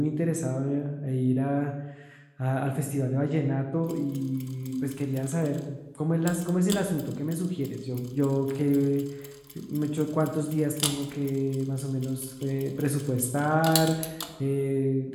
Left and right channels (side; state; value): both; identical; correlation 1.00